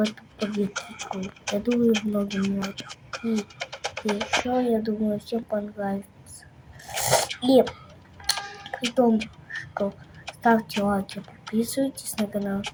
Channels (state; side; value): identical; both; correlation 1.00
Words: победку. Я думаю, многим лайков. И еще, я думаю, всем понравится. И при том, что ставьте лайки, подписывайтесь на канал